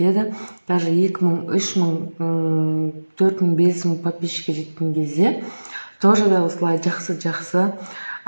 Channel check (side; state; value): both; inverted; correlation -1.00